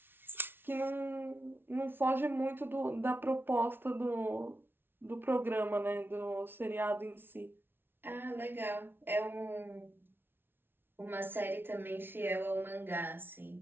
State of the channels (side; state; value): left; late; 0.11 ms